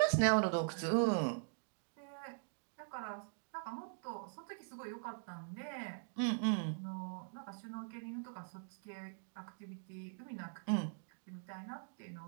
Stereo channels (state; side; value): silent; left; digital silence